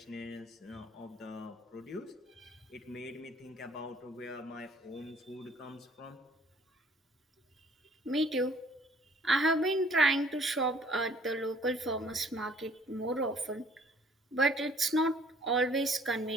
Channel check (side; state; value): both; normal; correlation 0.57